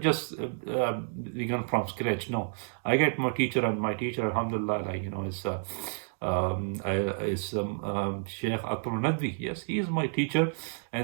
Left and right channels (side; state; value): left; silent; digital silence